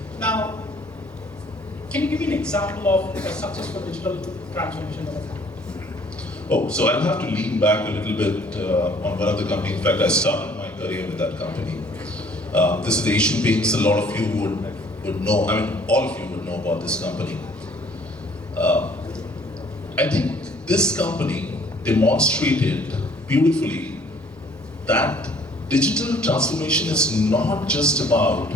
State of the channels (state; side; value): normal; both; correlation 0.58